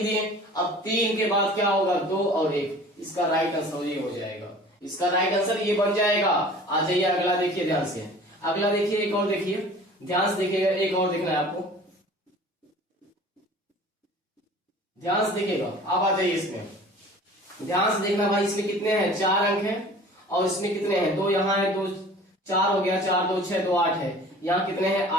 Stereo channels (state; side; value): normal; both; correlation 0.45